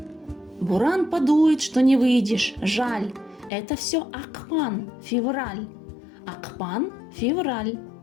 Буран подует, что не выйдешь, жаль. Это все ақпан, февраль. Ақпан, февраль.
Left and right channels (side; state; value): right; drops out; at 3.5 s